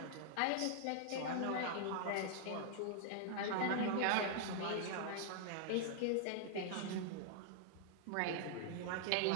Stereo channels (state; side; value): different; both; correlation 0.00